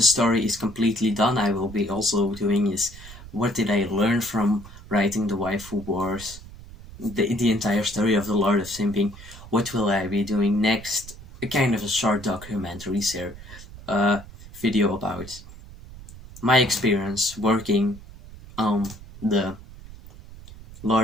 story is completely done, I will be also doing is what did I learn from writing the Waifu Wars, the entire story of the Lord of Simping. What will I be doing next? A kind of a short documentary video about my experience working on the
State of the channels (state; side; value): noise; right; rumble, 17 dB below the sound